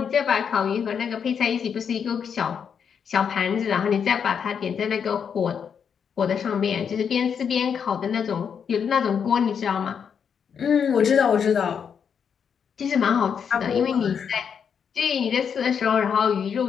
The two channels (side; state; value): right; quieter; 7.2 dB